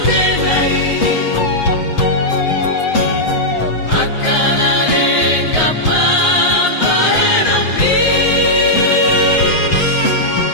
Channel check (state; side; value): late; right; 7.8 ms